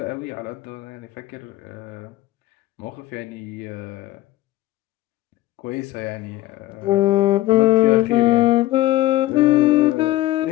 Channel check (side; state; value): right; quieter; 16.1 dB